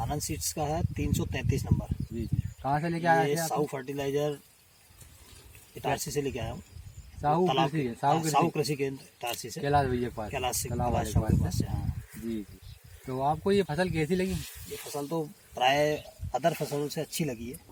सीड्स का है 333 नंबर। जी जी। कहाँ से लेके आए ये थे आप? साहू फर्टिलाइजर इटारसी से लेके आया हूँ। साहू तालाब कृषि के- है, साहू साहू कृषि, कृषि केंद्र इटारसी से, कैलाश भैया के पास, कैलाश से, तालाब वाले कैलाश के साहू के पास पास से। हाँ, से। जी जी। तो आपको ये फसल कैसी लगी? ये फसल तो प्राय अदर फसलों से अच्छी लगी है,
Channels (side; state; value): both; identical; correlation 1.00